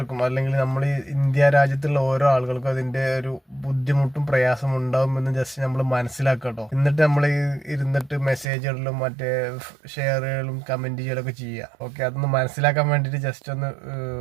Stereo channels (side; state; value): left; drops out; at 8.5 s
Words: അല്ലെങ്കിൽ നമ്മൾ ഈ ഇന്ത്യ രാജ്യത്തുള്ള ഓരോ ആളുകൾക്കും അതിന്റെ ഒരു ബുദ്ധിമുട്ടും പ്രയാസം ഉണ്ടാവുമെന്ന് ജസ്റ്റ് നമ്മൾ മനസ്സിലാക്കുക കേട്ടോ. എന്നിട്ട് നമ്മൾ ഇരുന്നിട്ട് മെസ്സേജുകളിലും മറ്റേ ഷെയറുകളും കമന്റ് ചെയ്യലൊക്കെ ചെയ്യുക. ഓക്കെ, അതൊന്ന് മനസ്സിലാക്കാൻ വേണ്ടിയിട്ട് ജസ്റ്റ് ഒന്ന്